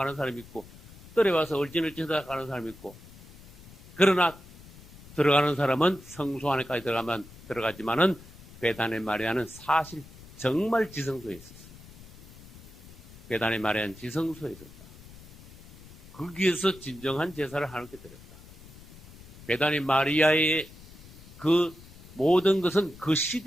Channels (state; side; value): noise; left; rumble, 19 dB below the sound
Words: 사람이 있고, 떨어와서 얼진을 쳐다가는 사람이 있고, 그러나 들어가는 사람은 성소 안에까지 들어가지만은 베다니 마리아는 사실 정말 지성소에 있었어요. 베다니 마리아는 지성소에 있었다. 거기에서 진정한 제사를 하나님께 드렸다. 베다니 마리아의 그 모든 것은 그